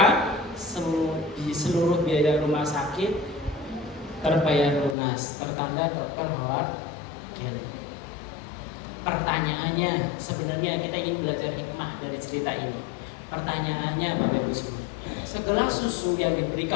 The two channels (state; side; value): drops out; right; at 5.0 s